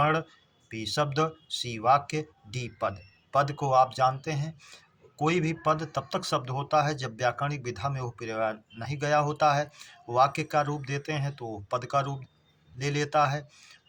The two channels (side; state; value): both; identical; correlation 1.00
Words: बी शब्द, सी वाक्य, डी पद। पद को आप जानते हैं, कोई भी पद तब तक शब्द होता है जब व्याकरणिक विधा में वो प्रयोग नहीं गया होता है। वाक्य का रूप देते हैं तो पद का रूप ले लेता है।